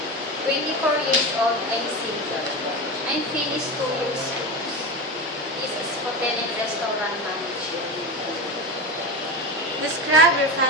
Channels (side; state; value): both; normal; correlation 0.22